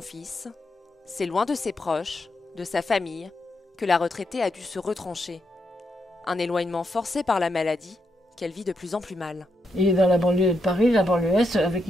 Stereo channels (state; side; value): normal; both; correlation 0.81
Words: c'est loin de ses proches, de sa famille, que la retraitée a dû se retrancher. Un éloignement forcé par la maladie qu'elle vit de plus en plus mal. Il est dans la banlieue de Paris, la banlieue Est, avec